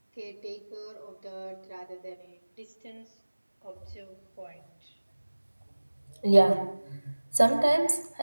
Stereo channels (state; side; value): inverted; both; correlation -1.00